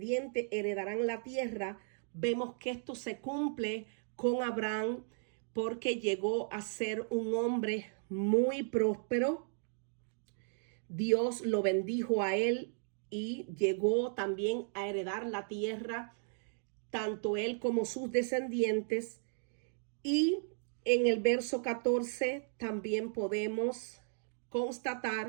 heredarán la tierra. Vemos que esto se cumple con Abraham porque llegó a ser un hombre muy próspero. Dios lo bendijo a él y llegó también a heredar la tierra, tanto él como sus descendientes. Y en el verso 14 también podemos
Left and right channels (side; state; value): left; silent; digital silence